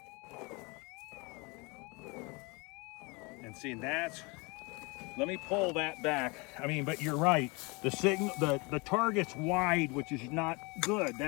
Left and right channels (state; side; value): quieter; right; 27.8 dB